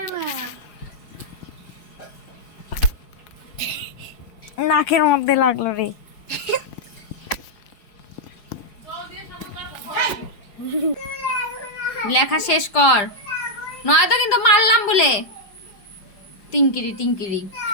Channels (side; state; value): right; late; 5.0 ms